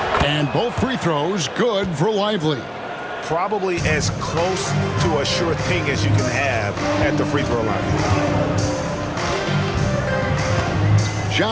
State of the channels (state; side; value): identical; both; correlation 1.00